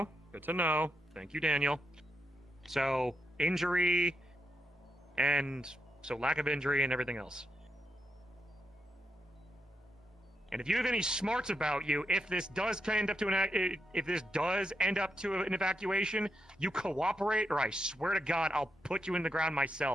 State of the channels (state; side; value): normal; both; correlation 0.83